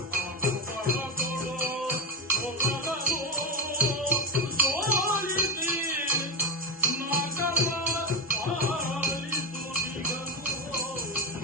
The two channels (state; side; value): normal; both; correlation 0.10